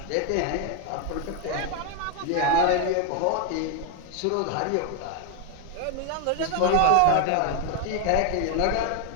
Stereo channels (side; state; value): both; different; correlation 0.01